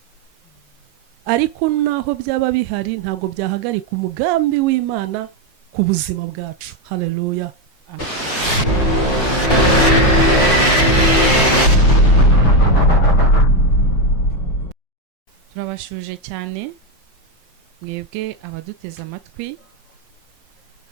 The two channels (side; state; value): right; late; 5.5 ms